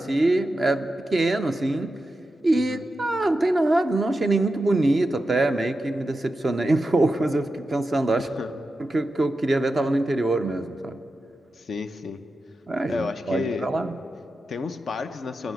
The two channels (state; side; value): normal; both; correlation 0.91